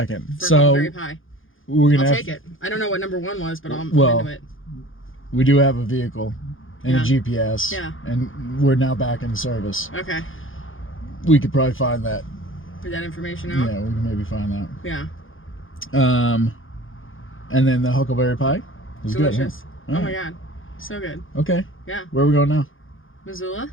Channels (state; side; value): late; right; 0.58 ms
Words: for So Huckleberry Pie. we're gonna I'll have take it. I don't know what number 1 was, but I'm Well, into it. we do have a vehicle and Yeah. a GPS. Yeah. And we're now back in service. Okay. We could probably find that. Put that information out. Yeah, we can maybe find that. Yeah. And then the Huckleberry Pie was Delicious. good. Huh? Oh my god. So good. Okay. Yeah. Where are we going now? Missoula?